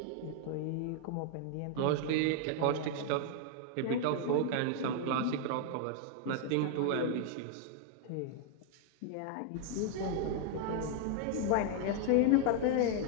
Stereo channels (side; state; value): both; different; correlation 0.00